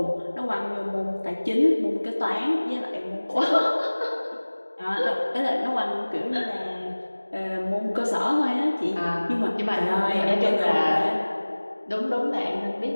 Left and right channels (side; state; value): both; inverted; correlation -1.00